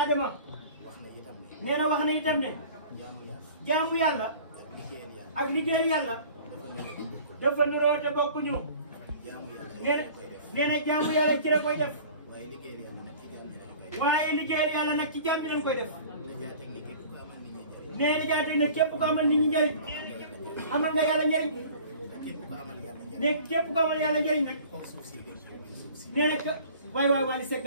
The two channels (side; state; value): both; inverted; correlation -0.45